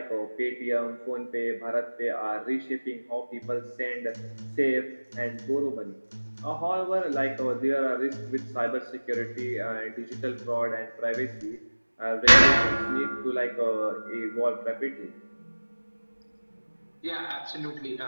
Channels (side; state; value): both; inverted; correlation -1.00